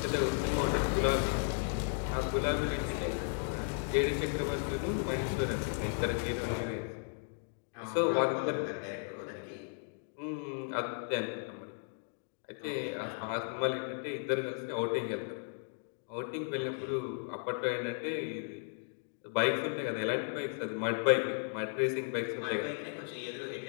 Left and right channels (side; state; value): right; silent; 54 dB below the other